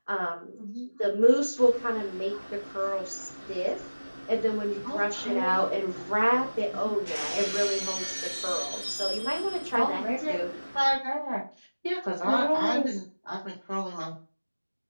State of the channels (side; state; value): both; inverted; correlation -1.00